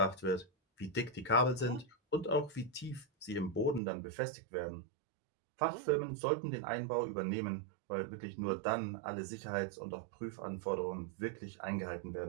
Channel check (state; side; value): drops out; left; at 3.8 s